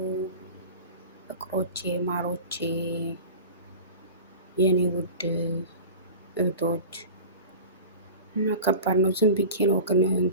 ፍቅሮቼ፣ ማሮቼ፣ የኔ ውድ እህቶች። እና ከባድ ነው። ዝም ብዬ ነው ግን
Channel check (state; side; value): inverted; both; correlation -0.35